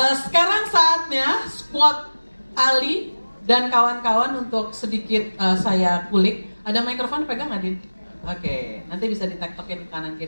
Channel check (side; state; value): both; inverted; correlation -1.00